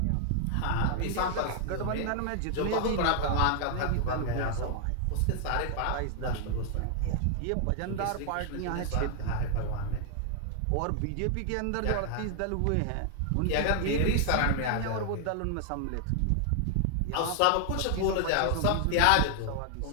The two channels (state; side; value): different; both; correlation 0.00